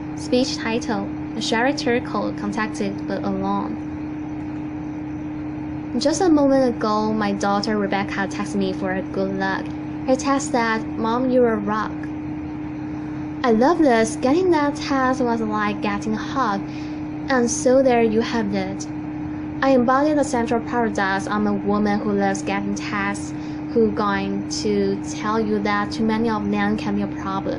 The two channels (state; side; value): identical; both; correlation 1.00